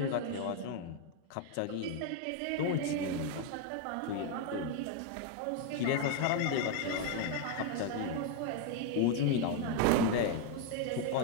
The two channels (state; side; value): different; both; correlation 0.00